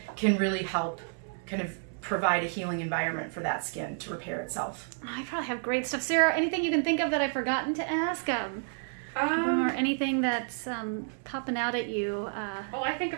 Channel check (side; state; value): left; silent; digital silence